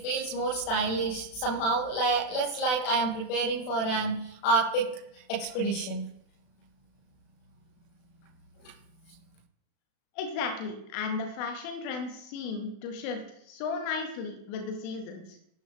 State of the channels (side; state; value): right; late; 36 ms